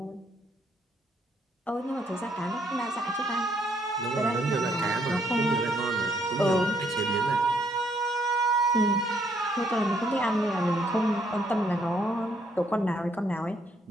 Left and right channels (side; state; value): both; normal; correlation 0.70